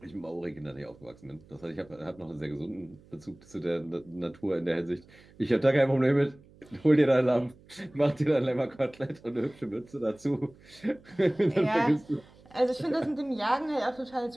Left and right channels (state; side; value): noise; right; hum, 25 dB below the sound